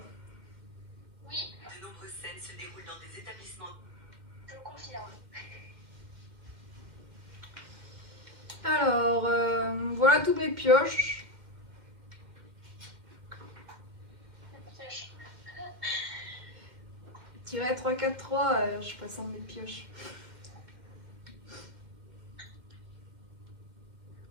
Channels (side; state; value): left; late; 2.1 ms